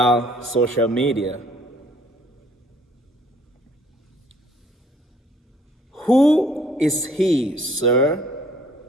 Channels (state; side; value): normal; both; correlation 0.59